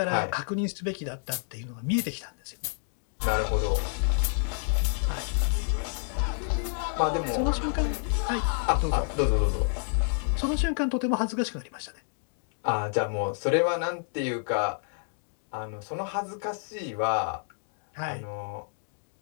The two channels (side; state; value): right; silent; digital silence